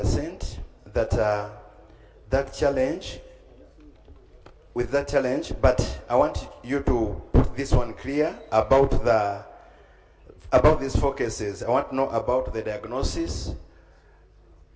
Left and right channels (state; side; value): identical; both; correlation 1.00